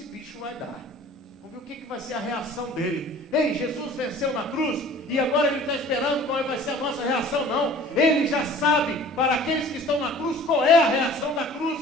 bicho vai dar. Vamos ver o que vai ser a reação dele. Ei, Jesus venceu na cruz e agora ele está esperando qual vai ser a nossa reação. Não, ele já sabe, para aqueles que estão na cruz, qual é a reação da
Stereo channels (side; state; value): both; normal; correlation 0.47